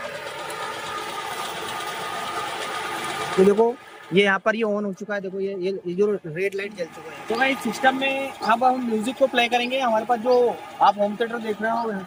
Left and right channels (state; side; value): identical; both; correlation 1.00